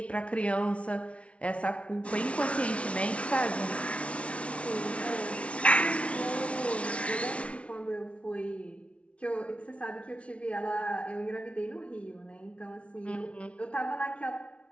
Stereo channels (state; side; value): late; right; 0.062 ms